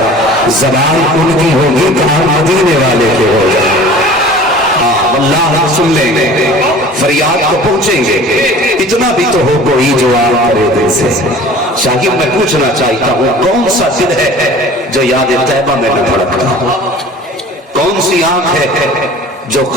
زبان ان کی ہوگی کان مدینے والے کے ہو جائے۔ اللہ سن لیں گے، فریاد کو پہنچیں گے، اتنا بھی تو ہو کوئی جو آن کرے دل سے۔ شاہد میں پوچھنا چاہتا ہوں کون سا دل ہے جو یاد طیبہ میں نہ دھڑکتا، کون سی آنکھ ہے جو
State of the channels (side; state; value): both; normal; correlation 0.44